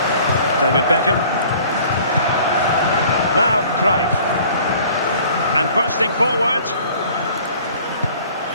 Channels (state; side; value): inverted; both; correlation -0.51